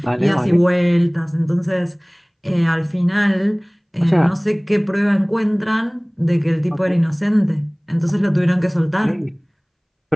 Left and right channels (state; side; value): identical; both; correlation 1.00